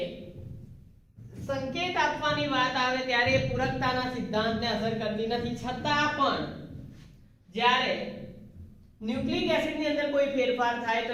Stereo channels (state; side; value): identical; both; correlation 1.00